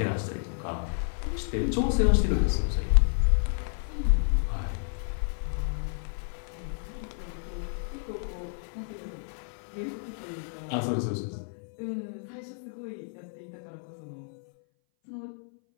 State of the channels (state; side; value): silent; right; 58 dB below the other